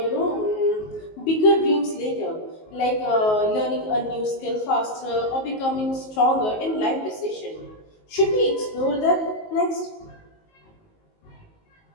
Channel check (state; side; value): late; right; 19 ms